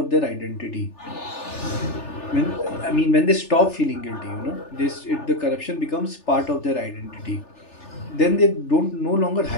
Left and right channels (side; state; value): right; late; 3.4 ms